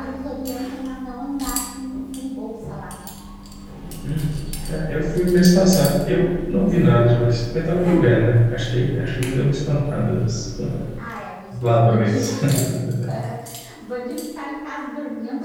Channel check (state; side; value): identical; both; correlation 1.00